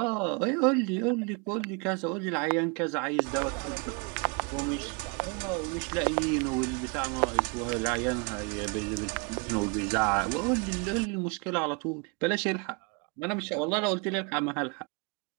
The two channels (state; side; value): quieter; left; 33.0 dB